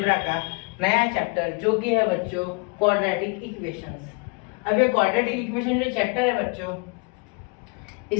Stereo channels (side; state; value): right; quieter; 31.4 dB